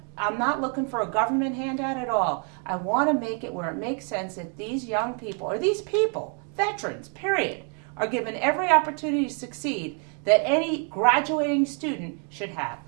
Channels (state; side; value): quieter; left; 39.3 dB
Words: I'm not looking for a government handout at all. I want to make it where it makes sense that these young people, or these people, veterans, period, are given every opportunity to succeed that any graduating student should have.